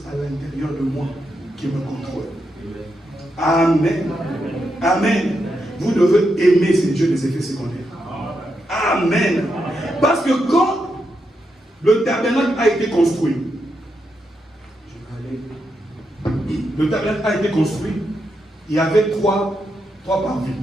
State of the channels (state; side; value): normal; both; correlation 0.83